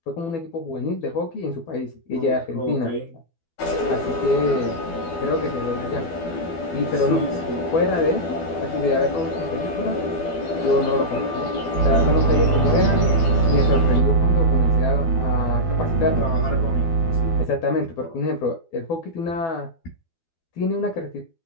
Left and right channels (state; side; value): late; right; 12 ms